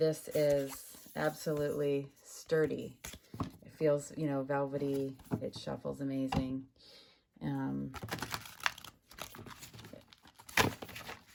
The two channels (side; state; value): both; identical; correlation 1.00